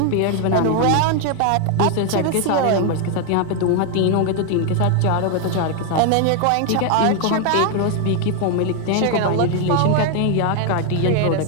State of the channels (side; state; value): both; different; correlation 0.00